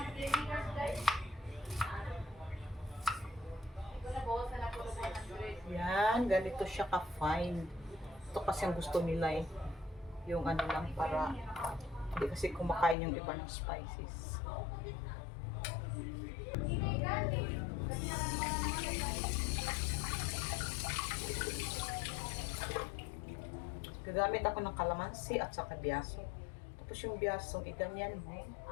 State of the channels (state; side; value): drops out; right; at 13.0 s